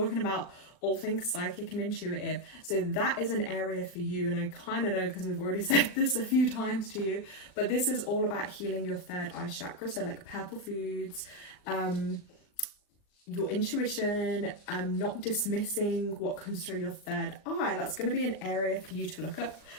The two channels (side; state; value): right; late; 39 ms